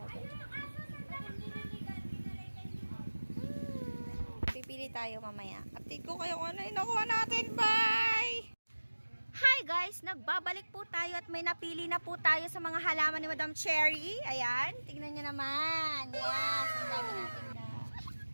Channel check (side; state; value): both; inverted; correlation -1.00